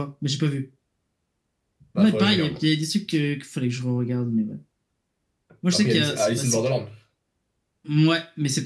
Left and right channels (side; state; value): both; identical; correlation 1.00